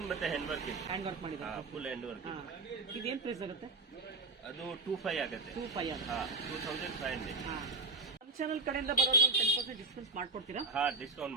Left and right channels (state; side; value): quieter; left; 3.6 dB